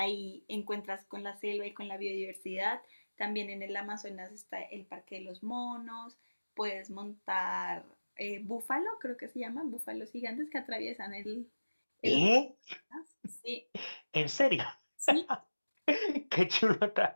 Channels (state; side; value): inverted; both; correlation -1.00